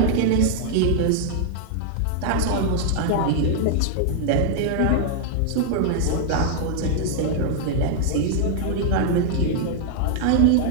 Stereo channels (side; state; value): both; different; correlation -0.01